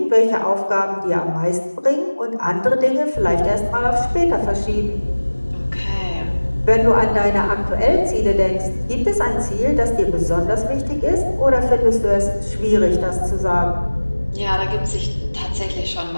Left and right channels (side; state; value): both; inverted; correlation -1.00